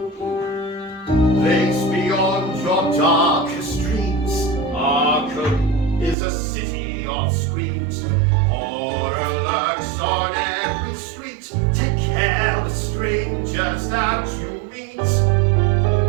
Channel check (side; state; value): left; drops out; at 6.2 s